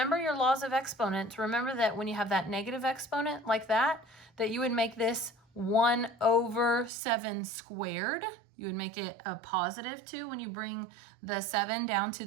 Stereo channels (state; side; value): drops out; left; at 6.9 s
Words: your laws of exponents, remember that when you have that negative exponent like that you would make this 1 over 7 squared. You would make it a positive 2 when you bring the 7 down to